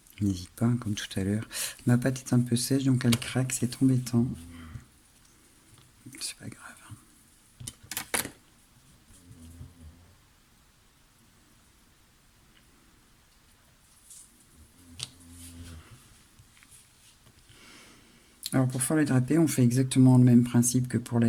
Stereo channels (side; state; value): both; identical; correlation 1.00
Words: N'hésite pas, comme tout à l'heure. Ma pâte est un peu sèche, donc elle craque, c'est embêtant. C'est pas grave. Alors pour faire les drapés, on fait exactement le même principe que pour